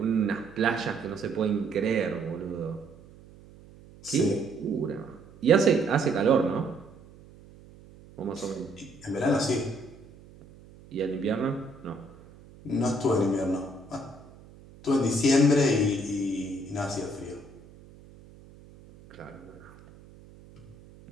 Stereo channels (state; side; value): noise; right; hum, 22 dB below the sound